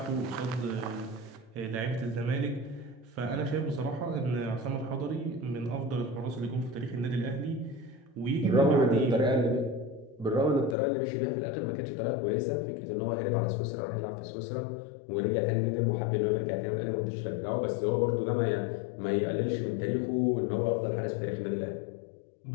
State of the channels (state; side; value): drops out; right; at 10.8 s